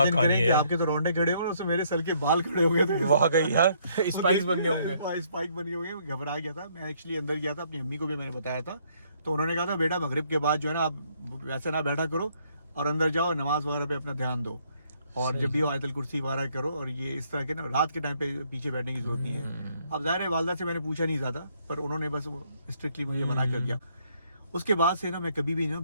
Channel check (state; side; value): inverted; both; correlation -0.68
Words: कहानी करें है कि यार। आपके तो रोंडे खड़े हो और उसमें मेरे सर के बाल खड़े हो गए थे। वाकई यार स्पाइक्स बन गए होंगे। स्पाइक बन गए होंगे, घबरा गया था मैं। एक्चुअली अंदर गया था, अपनी अम्मी को भी मैंने बताया था, तो उन्होंने कहा था बेटा मगरिब के बाद जो है ना आप वैसे ना बैठा करो और अंदर जाओ, नमाज वगैरह पे अपना ध्यान दो, और जब भी हो आयतल कुर्सी वगैरह करो, और ये इस तरह के ना रात के टाइम पे पीछे बैठने की जरूरत नहीं है। अब जाहिर है वालदा से मैंने पूछा नहीं ज्यादा, पर उन्होंने बस स्ट्रिक्टली मुझे मना कर दिया। उसके बाद से ना मैं कभी भी ना